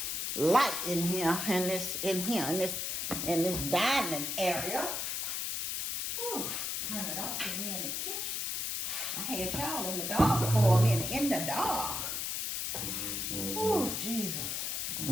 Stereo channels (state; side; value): noise; left; hiss, 1 dB below the sound